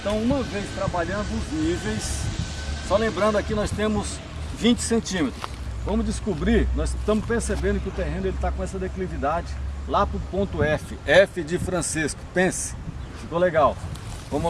uma vez trabalhando os níveis, só lembrando aqui nós temos 20 centímetros. Vamos descobrir, nós estamos percebendo que o terreno está com essa declividade lá para o ponto F, F de Francisco. Pense, ficou legal.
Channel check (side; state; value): both; identical; correlation 1.00